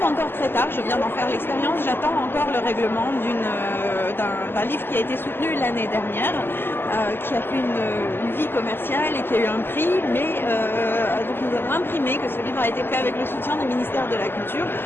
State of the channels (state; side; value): late; right; 0.10 ms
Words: encore très tard, je viens d'en faire l'expérience, j'attends encore le règlement d'un livre qui a été soutenu l'année dernière, qui a fait une vie commerciale et qui a eu un prix, mais donc nous avons imprimé que ce livre a été fait avec le soutien du ministère de la Culture.